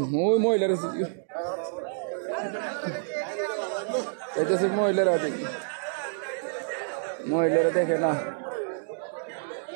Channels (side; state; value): left; silent; digital silence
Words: ওই মহিলার মহিলারা দেখি, মহিলারা দেখে না।